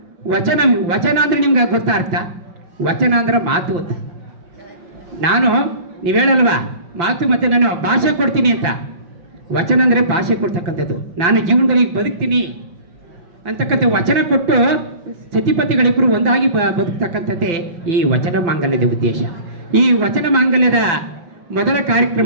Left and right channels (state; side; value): late; left; 5.9 ms